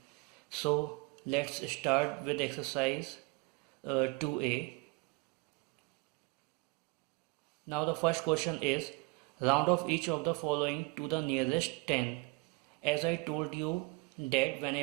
So let's start with exercise 2a. Now the first question is round off each of the following to the nearest 10. As I told you that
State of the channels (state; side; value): quieter; left; 28.3 dB